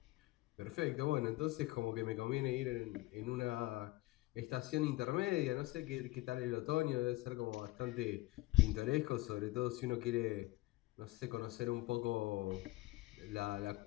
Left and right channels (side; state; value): right; quieter; 19.9 dB